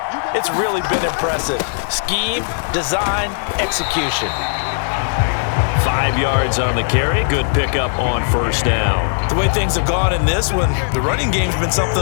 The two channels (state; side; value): silent; right; digital silence